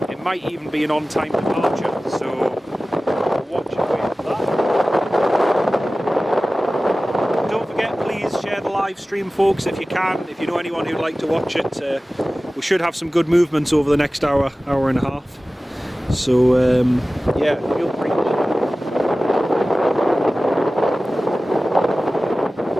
might even be an on-time departure, so watch it wait for that. Don't forget, please share the live stream, folks, if you can, if you know anyone who'd like to watch it. We should have some good movements over the next hour and a half. So yeah, feel free.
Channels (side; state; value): both; normal; correlation 0.97